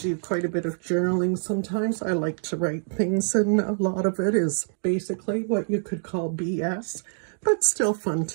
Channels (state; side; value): silent; left; digital silence